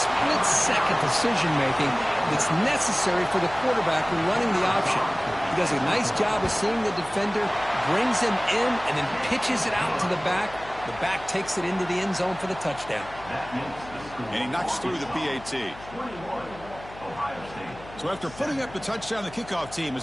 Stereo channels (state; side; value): noise; left; hum, 18 dB below the sound